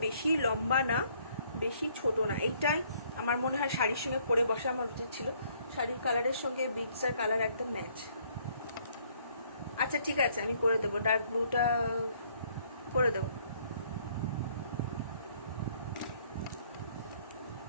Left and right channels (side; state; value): both; inverted; correlation -0.64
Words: বেশি লম্বা না বেশি ছোট না, এইটাই আমার মনে হয় শাড়ির সঙ্গে পরে বসা আমার উচিত ছিল, শাড়ির কালারের সঙ্গে বিটসের কালার একদম ম্যাচ। আচ্ছা ঠিক আছে, আমি করে দেবো, ডার্ক ব্লুটা করে দেবো।